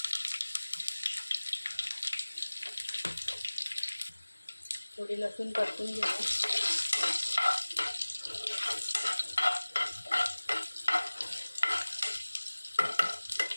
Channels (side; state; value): both; inverted; correlation -1.00